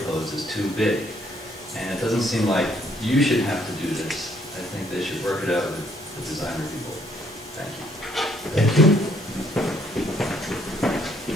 is too big. And it doesn't seem like you should have to do this. I think they should work it out with the designer people. Thank you. Thank you.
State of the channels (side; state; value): both; normal; correlation 0.67